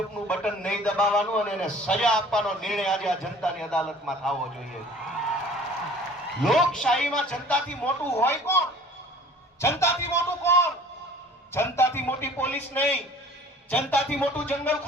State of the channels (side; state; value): both; normal; correlation 0.48